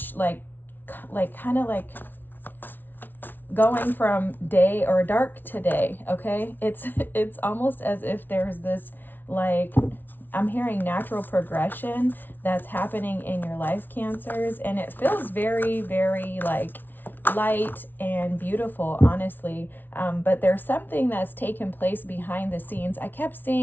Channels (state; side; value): late; right; 0.092 ms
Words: like kind of like going from day or dark to day. Okay. It's almost as if there's this like, I'm hearing natural progression that's happening in your life, Cancers, and it feels very, very like light and beautiful, honestly. But there's something that's taken place behind the scenes. I kept